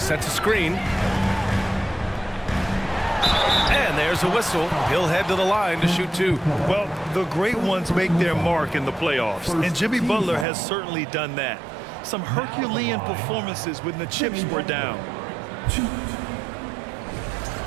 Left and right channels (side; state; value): left; drops out; at 10.5 s